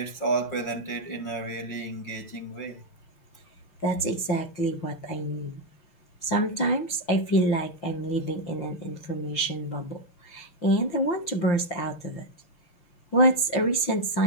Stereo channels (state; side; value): late; right; 5.8 ms